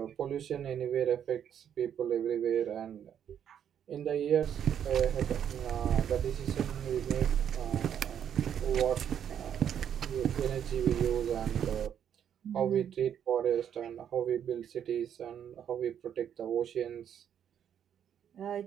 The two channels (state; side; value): quieter; left; 9.1 dB